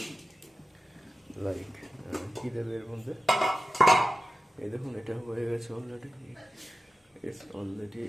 লাইক কী দেবে এর মধ্যে। এই দেখুন এটা হয়ে গেছে অলরেডি,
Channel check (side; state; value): both; normal; correlation 0.93